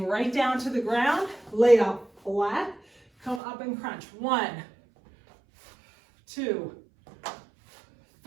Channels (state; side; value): drops out; left; at 3.4 s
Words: right down to the ground, lay out flat, come up and crunch. 1, 2,